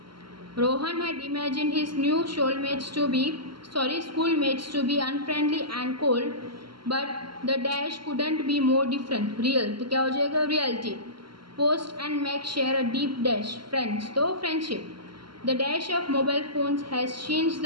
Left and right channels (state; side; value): late; left; 0.73 ms